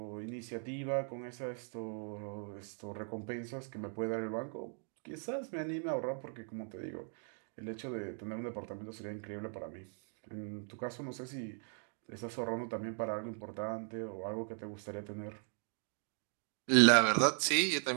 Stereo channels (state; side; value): silent; left; 52 dB below the other